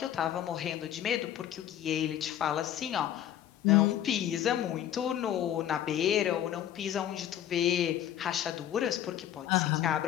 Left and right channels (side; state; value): right; quieter; 11.1 dB